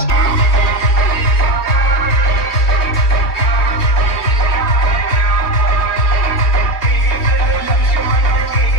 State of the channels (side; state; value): right; late; 3.1 ms